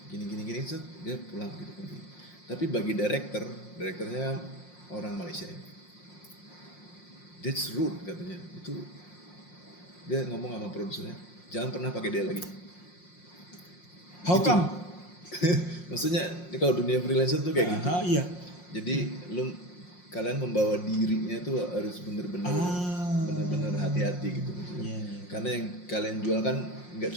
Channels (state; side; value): late; right; 5.6 ms